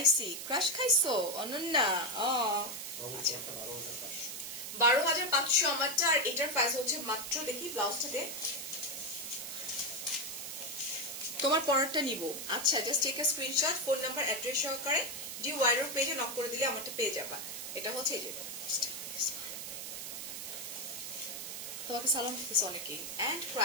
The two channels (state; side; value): noise; right; hiss, 7 dB below the sound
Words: ক্রাশ খাইছো অনন্যা? 12,500 আমারটা। আর এটার প্রাইস হচ্ছে মাত্র, দেখি ব্লাউজটাতে, তোমার পরেরটা নিব। আচ্ছা, just take a screenshot, phone number address সহকারে ডি ওয়াইরোর পেজে নক করে দিলে আমারটা পেয়ে যাবা। এটা হচ্ছে এই যে, তোমাকে সালাম দিতেছে অনেকেই। এন্ড